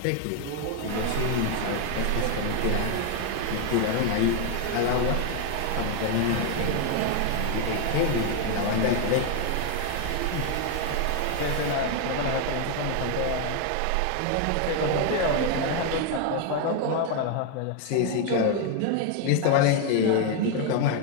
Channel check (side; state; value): both; different; correlation 0.01